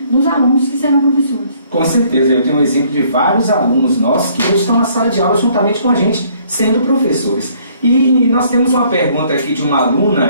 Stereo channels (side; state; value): both; inverted; correlation -0.63